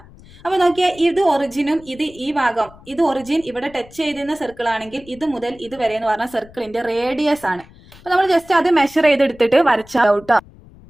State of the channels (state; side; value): noise; left; rumble, 23 dB below the sound